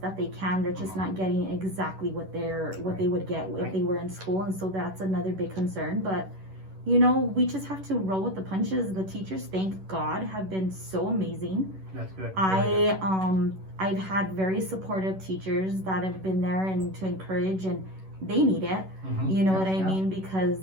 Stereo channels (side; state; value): left; late; 11 ms